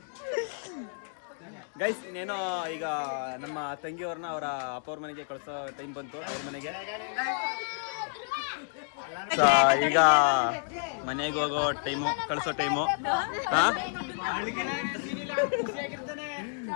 ಗೈಸ್, ಇನ್ನೇನೋ ಈಗ ನಮ್ಮ ತಂಗಿಯವ್ರನ್ನ ಅವರ ಅಪ್ಪವ್ರ ಮನೆಗೆ ಕಳ್ಸೋ ಟೈಮ್ ಬಂತು. ಅವ್ರ ಮನೆಗೆ ಈಗ ಮನೆಗೆ ಹೋಗೋ ಟೈಮು, ಕಳ್ಸೋ ಟೈಮು.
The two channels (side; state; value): right; silent; digital silence